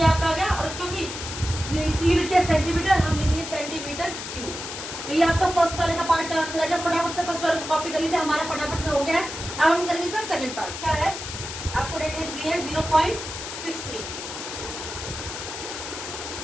आपका आ गया। और क्योंकि यूनिट क्या सेंटीमीटर, हम लिखेंगे सेंटीमीटर क्यूब। तो ये आपका फर्स्ट वाले का पार्ट का आंसर है। जब फटाफट से फर्स्ट वाले को कॉपी कर लीजिए, हमारा फटाफट से हो गया है। अब हम करेंगे इसका सेकंड पार्ट। क्या है, आपको रेडियस दी है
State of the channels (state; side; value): noise; left; hiss, 8 dB below the sound